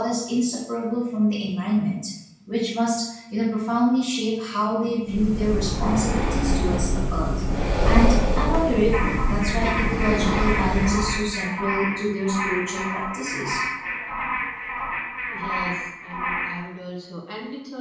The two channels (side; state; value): both; identical; correlation 1.00